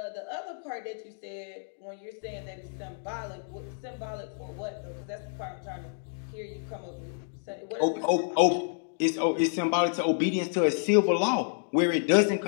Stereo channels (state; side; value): silent; right; digital silence